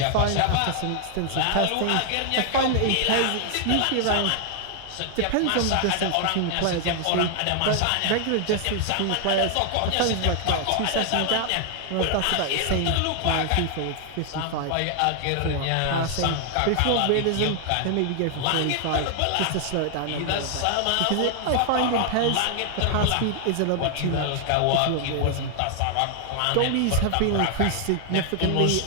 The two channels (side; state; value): both; different; correlation 0.00